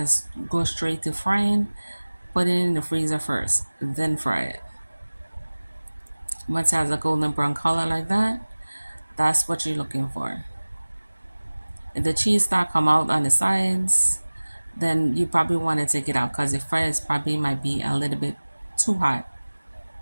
go straight to frying. Put it in the freezer first, then fry it. Once it has a golden brown color like that, that's what you're looking for. If the cheese start come out on the sides, then you probably want to take it out because the fries probably might be a little bit too hot.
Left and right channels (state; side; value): inverted; both; correlation -1.00